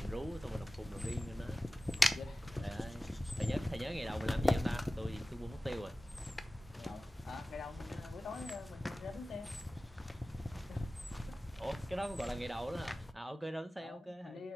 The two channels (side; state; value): both; normal; correlation 0.96